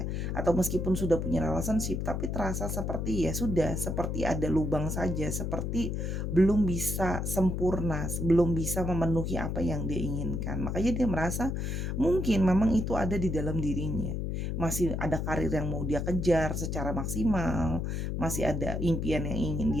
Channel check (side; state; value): left; noise; hum, 2 dB below the sound